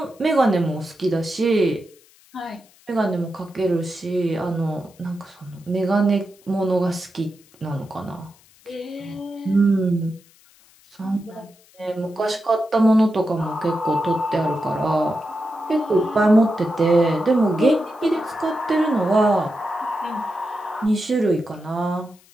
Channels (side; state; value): left; noise; hiss, 29 dB below the sound